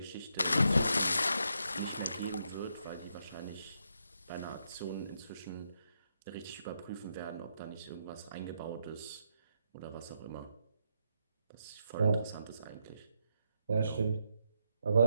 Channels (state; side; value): inverted; both; correlation -0.80